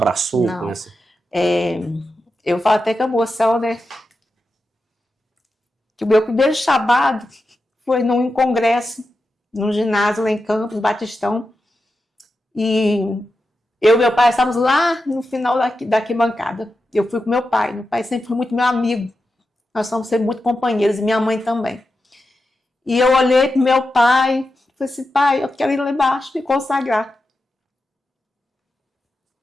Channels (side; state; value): both; normal; correlation 0.90